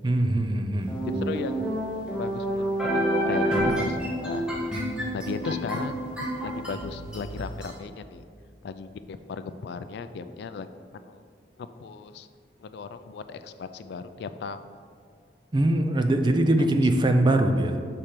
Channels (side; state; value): both; normal; correlation 0.73